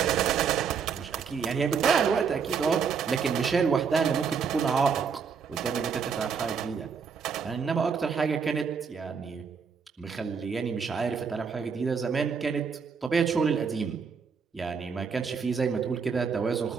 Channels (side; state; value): left; quieter; 6.1 dB